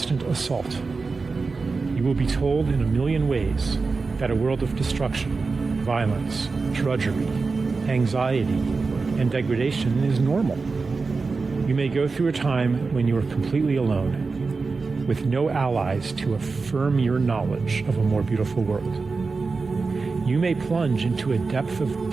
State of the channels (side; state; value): left; quieter; 4.3 dB